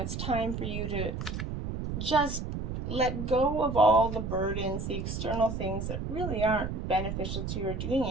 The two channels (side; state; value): right; noise; rumble, 4 dB below the sound